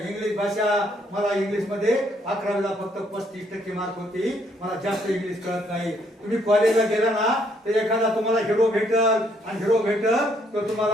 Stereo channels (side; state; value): both; normal; correlation 0.69